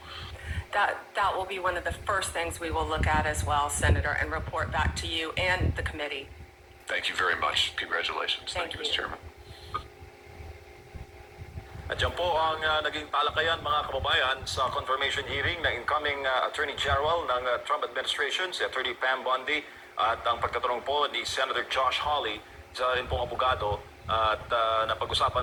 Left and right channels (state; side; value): identical; both; correlation 1.00